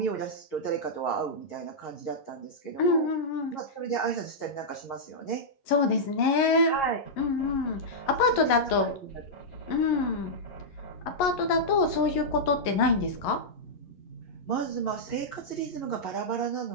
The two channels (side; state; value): right; late; 11 ms